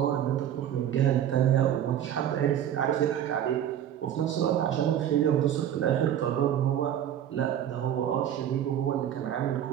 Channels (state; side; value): quieter; left; 10.4 dB